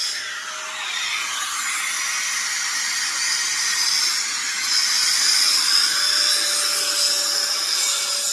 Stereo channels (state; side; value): identical; both; correlation 1.00